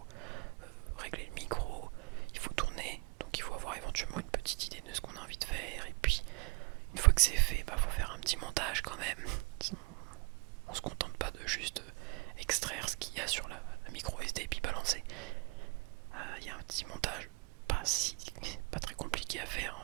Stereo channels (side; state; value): left; quieter; 29.1 dB